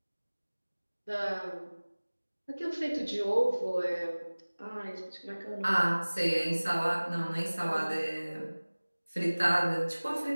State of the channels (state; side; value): inverted; both; correlation -1.00